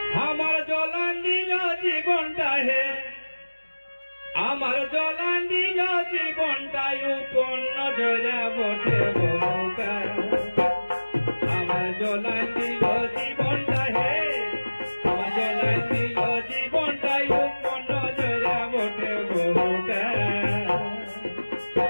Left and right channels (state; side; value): inverted; both; correlation -1.00